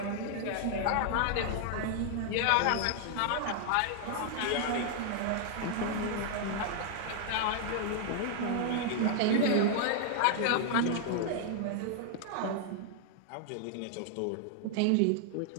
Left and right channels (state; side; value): different; both; correlation 0.00